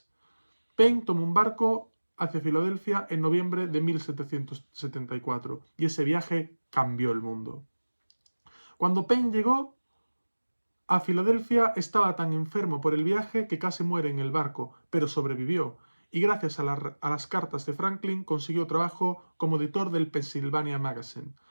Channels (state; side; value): inverted; both; correlation -1.00